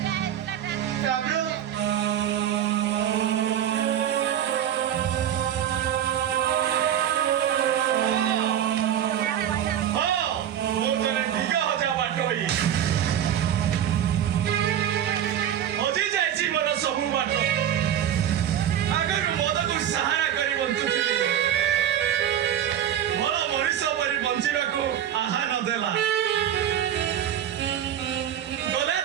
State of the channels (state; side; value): quieter; left; 10.3 dB